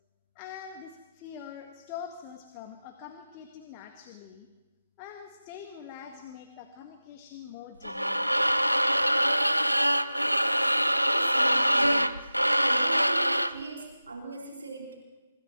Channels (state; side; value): inverted; both; correlation -0.96